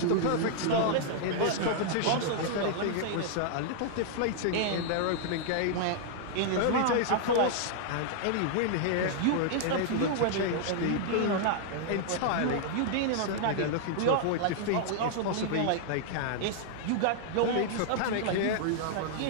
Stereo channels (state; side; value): different; both; correlation -0.01